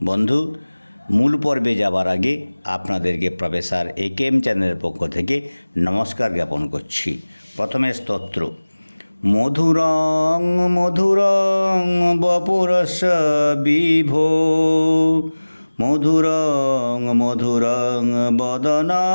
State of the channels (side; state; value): both; inverted; correlation -1.00